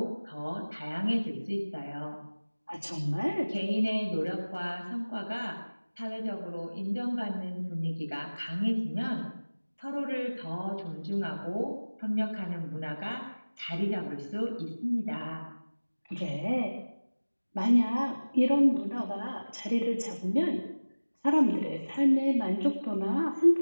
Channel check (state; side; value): inverted; both; correlation -1.00